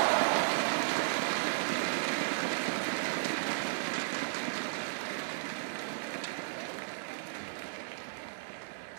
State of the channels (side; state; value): left; silent; digital silence